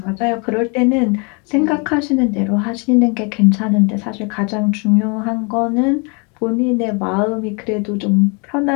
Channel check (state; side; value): quieter; right; 33.2 dB